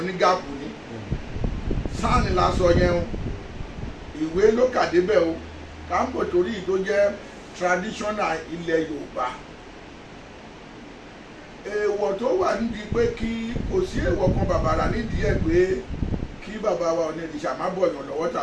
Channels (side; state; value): both; identical; correlation 1.00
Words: ní gáàpù ni. Sáànì la sọ yẹn o, ìwé ló kà débẹ̀ o, káńpò torí tó jẹ́ traditional ilẹ̀ Yorùbá. Èèwọ̀ tó wà nídìí pé kí kò sí èèwọ̀ kan bàbàrà nídìí ẹ̀ pé kí bàbá wa Ọ̀nìrìṣà má bọ̀yàn lọ́wọ́